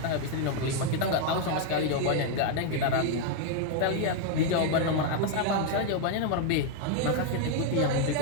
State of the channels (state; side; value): different; both; correlation 0.00